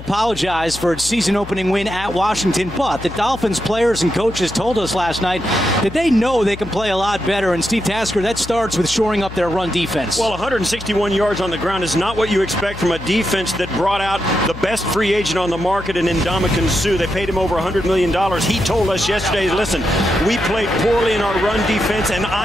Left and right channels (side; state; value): left; noise; hum, 13 dB below the sound